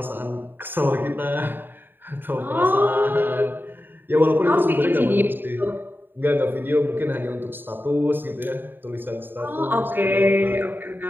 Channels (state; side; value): late; left; 0.095 ms